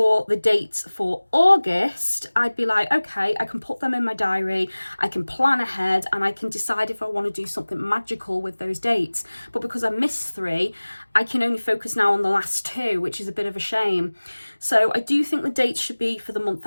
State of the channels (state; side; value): inverted; both; correlation -1.00